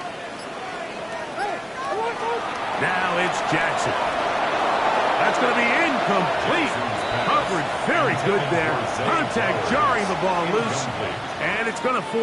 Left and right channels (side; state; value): both; identical; correlation 1.00